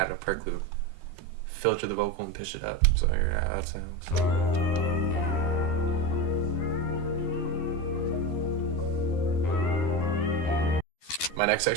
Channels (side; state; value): right; late; 12 ms